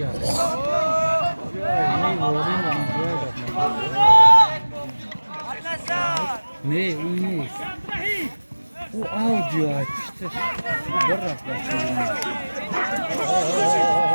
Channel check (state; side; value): inverted; both; correlation -1.00